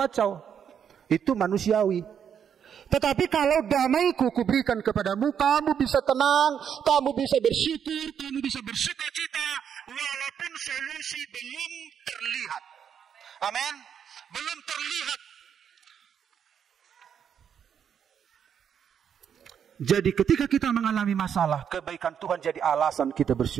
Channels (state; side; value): quieter; left; 8.2 dB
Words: Itu manusiawi. Tetapi kalau damaiku kuberikan kepadamu, kamu bisa tenang, kamu bisa bersyukur, kamu bisa bersukacita, walaupun solusi belum terlihat. Amin. Belum terlihat. Jadi ketika kita mengalami masalah, kebaikan Tuhan jadi alasan kita